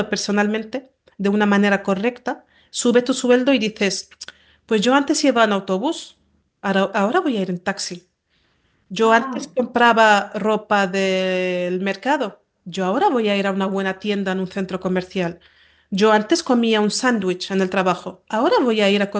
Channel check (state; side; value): identical; both; correlation 1.00